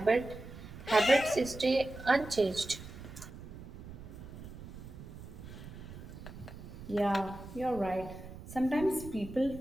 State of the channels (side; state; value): right; noise; rumble, 13 dB below the sound